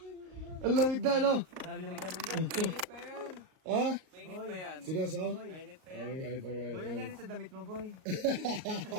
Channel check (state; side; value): late; left; 38 ms